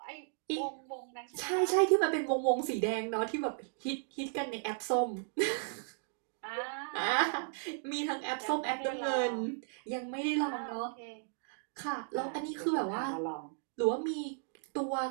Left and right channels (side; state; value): left; silent; digital silence